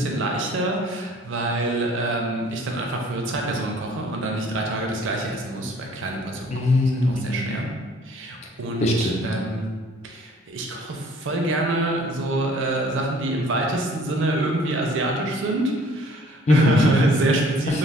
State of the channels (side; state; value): both; normal; correlation 0.55